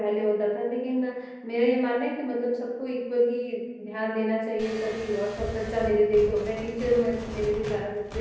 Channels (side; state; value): both; identical; correlation 1.00